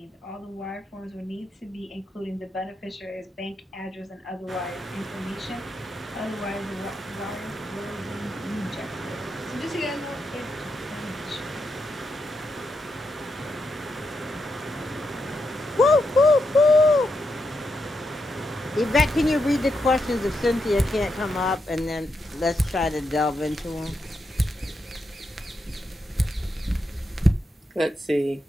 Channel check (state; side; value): normal; both; correlation 0.84